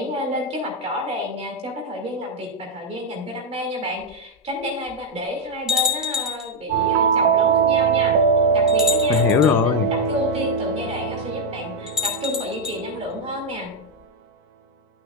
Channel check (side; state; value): both; normal; correlation 0.01